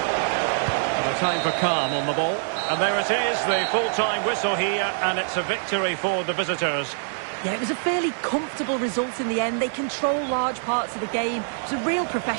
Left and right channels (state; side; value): silent; left; 60 dB below the other